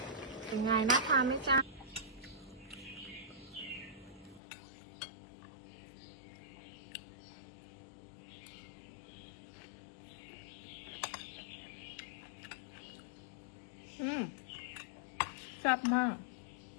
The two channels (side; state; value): right; drops out; at 4.4 s